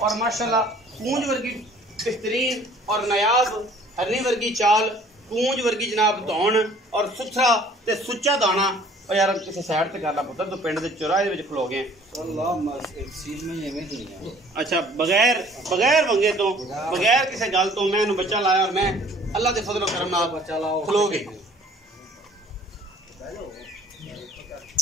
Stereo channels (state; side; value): normal; both; correlation 0.54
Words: और माशाल्लाह पूंज वर्गी बेहतरीन और नायाब हरनी वर्गी चाल, पूंज वर्गी जनाब धौन और सुथरा ते सुच्चा दाना। और यार किसी साइड ते कर ला पुत्तर, तो पिंड दे चौराहे दे विच खलो गए। अच्छा बगैर बगैर वंगे तो बगैर किसी गल तो मैं बच्चा लाया और मैं अल्लाह दे फजलो करम नाल खलो गए।